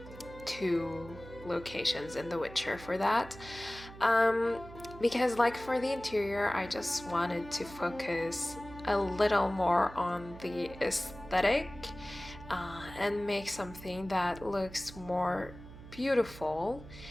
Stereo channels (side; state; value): right; noise; hum, 16 dB below the sound